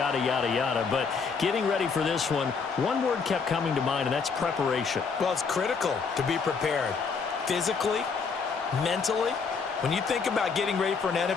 yada, yada. But getting ready for this one word kept coming to mind, and that's preparation. Well, it's critical to be prepared. Physically, mentally. When you think about getting ready for an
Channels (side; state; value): right; quieter; 5.3 dB